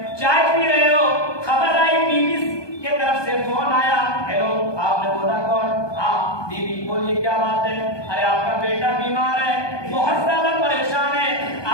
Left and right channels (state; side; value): late; right; 1.2 ms